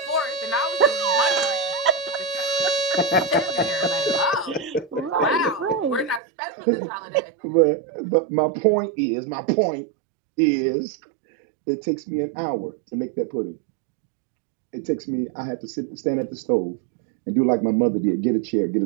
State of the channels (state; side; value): drops out; left; at 6.2 s